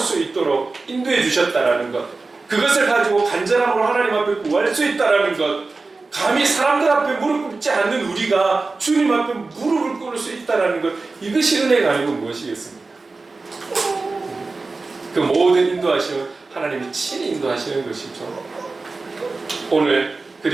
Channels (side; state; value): left; quieter; 3.7 dB